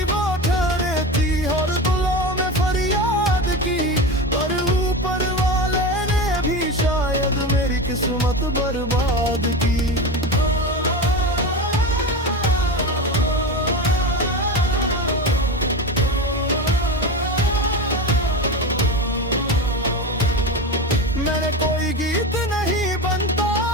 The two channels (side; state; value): both; normal; correlation 0.23